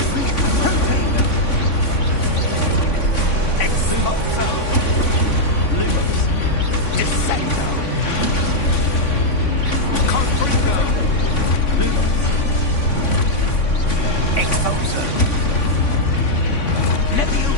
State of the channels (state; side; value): late; right; 3.5 ms